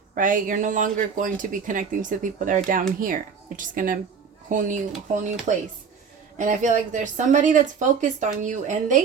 right? You're no longer going to be connecting to the people that are down here. You're just gonna whole new place. And I feel like there's somebody that's focused on you, and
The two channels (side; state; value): left; quieter; 6.2 dB